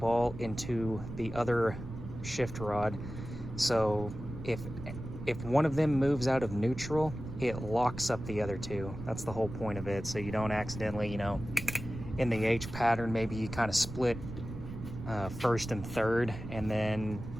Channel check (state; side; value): noise; right; rumble, 10 dB below the sound